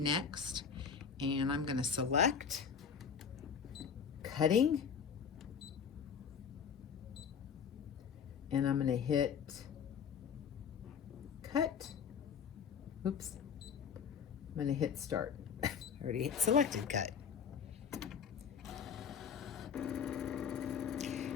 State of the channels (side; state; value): right; quieter; 6.9 dB